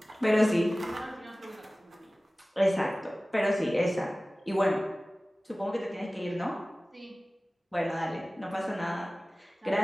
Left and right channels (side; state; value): both; normal; correlation 0.98